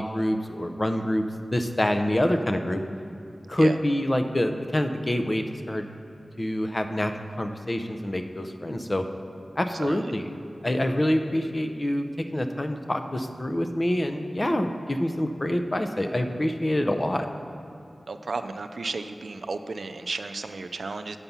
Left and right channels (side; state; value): both; normal; correlation 0.98